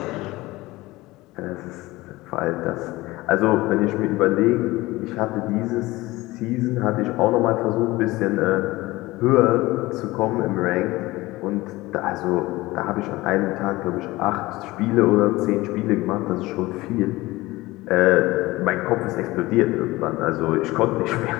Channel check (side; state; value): right; quieter; 19.7 dB